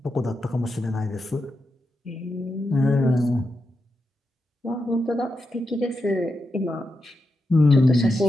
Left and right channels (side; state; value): both; normal; correlation 0.87